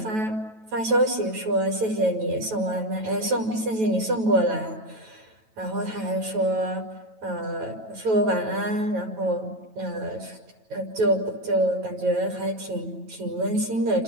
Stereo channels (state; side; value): late; left; 9.1 ms